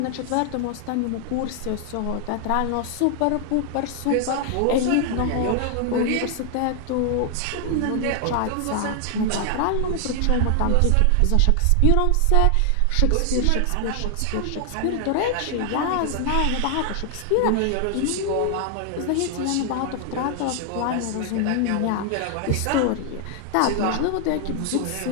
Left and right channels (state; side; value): different; both; correlation 0.00